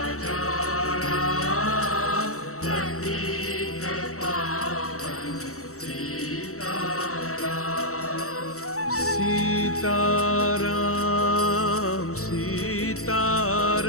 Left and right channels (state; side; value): late; right; 0.64 ms